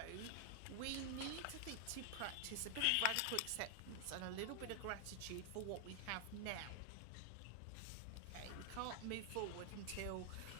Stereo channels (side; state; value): both; different; correlation 0.00